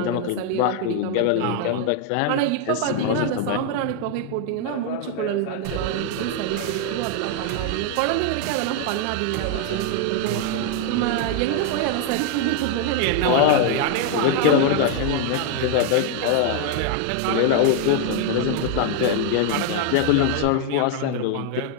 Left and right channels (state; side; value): different; both; correlation 0.00